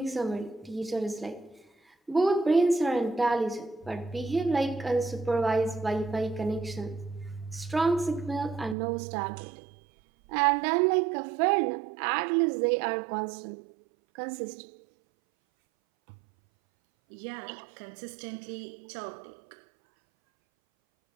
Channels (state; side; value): drops out; left; at 8.8 s